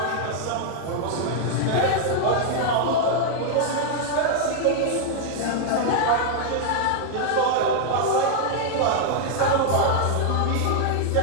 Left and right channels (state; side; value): different; both; correlation 0.00